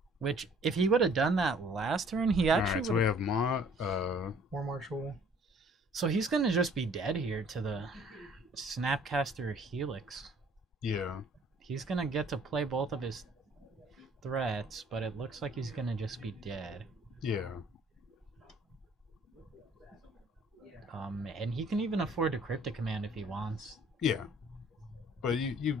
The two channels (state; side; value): normal; both; correlation 0.57